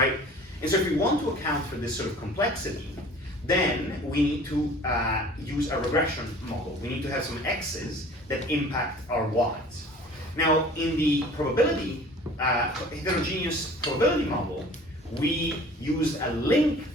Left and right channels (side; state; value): both; normal; correlation 0.46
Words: And so if we want to account for this sort of complexity, then we need to use a regression model. We need to have some x's that impact our y's. Now, in the probability, heterogeneous probability model, we use a link